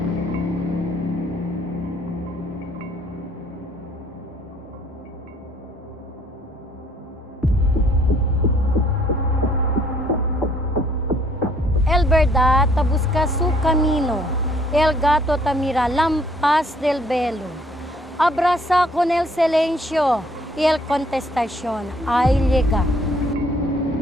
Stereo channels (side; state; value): both; normal; correlation 0.62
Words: El verdad te busca su camino, el gato te mira lampas del velo. Abraza con el silencio y el contestación ahí llega.